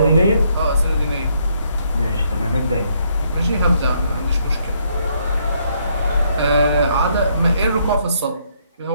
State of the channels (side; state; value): both; inverted; correlation -0.71